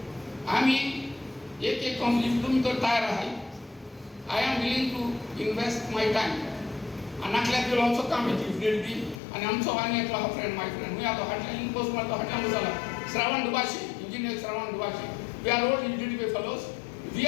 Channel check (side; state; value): right; drops out; at 9.2 s